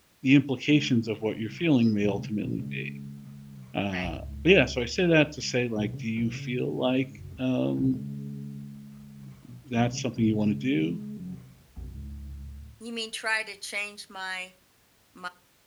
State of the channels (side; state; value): both; identical; correlation 1.00